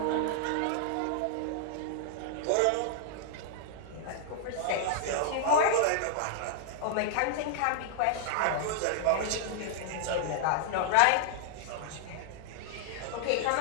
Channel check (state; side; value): different; both; correlation -0.01